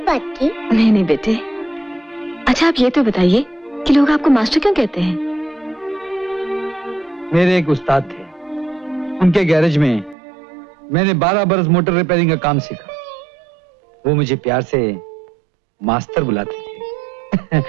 बात की? नहीं नहीं बेटे। अच्छा आप ये तो बताइए कि लोग आपको मास्टर क्यों कहते हैं? मेरे एक उस्ताद थे, उनके गैरेज में मैंने 12 बरस मोटर रिपेयरिंग का काम सीखा। वो मुझे प्यार से मास्टर बुलाते थे।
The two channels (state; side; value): drops out; left; at 10.2 s